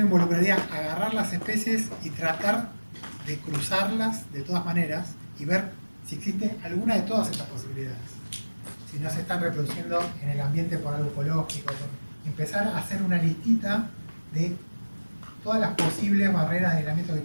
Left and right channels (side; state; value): both; inverted; correlation -1.00